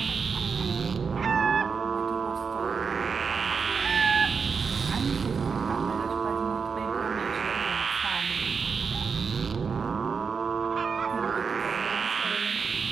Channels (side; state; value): left; quieter; 5.6 dB